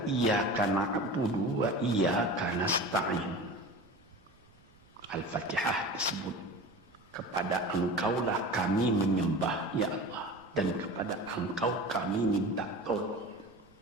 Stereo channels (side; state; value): right; noise; rumble, 29 dB below the sound